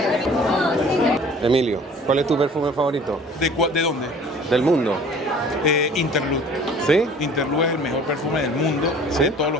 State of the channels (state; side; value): normal; both; correlation 0.49